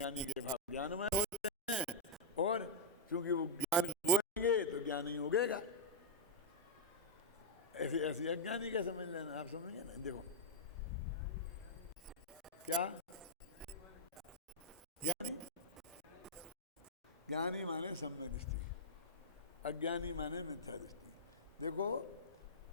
के भाव ज्ञानमय होते हैं, और चूंकि वो ज्ञान बोएंगे तो ज्ञान ही उगेगा। ऐसी अज्ञानी का समझ लेना, आप समझेंगे ना। देखो क्या ज्ञानी माने सम्यक दृष्टि, अज्ञानी माने मिथ्या दृष्टि। देखो,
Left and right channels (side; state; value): both; normal; correlation -0.07